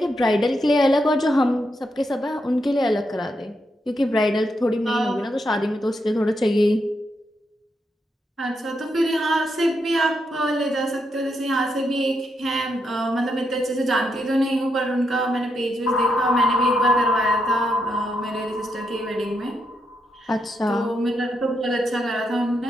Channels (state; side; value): normal; both; correlation 0.81